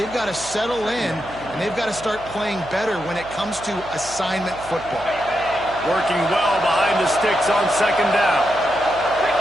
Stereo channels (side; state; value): right; noise; hum, 18 dB below the sound